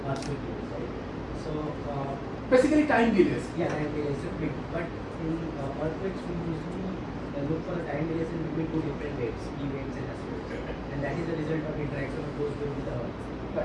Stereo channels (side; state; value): both; identical; correlation 1.00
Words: earthquake waves, right? So Basically, time delays. yeah, time delays are big, but in earthquakes we usually look for the time delays in between two different waves, E waves and S waves, and that is the result of interaction of those waves with the Earth.